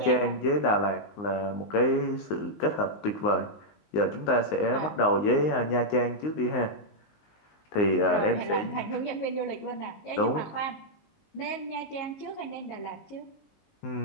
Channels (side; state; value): right; late; 19 ms